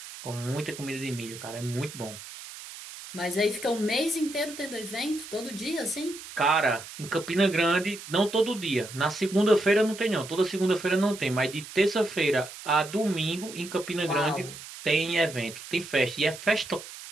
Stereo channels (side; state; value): right; noise; hiss, 13 dB below the sound